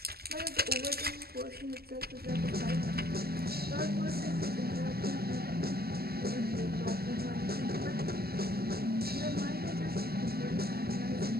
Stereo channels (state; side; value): late; left; 0.45 ms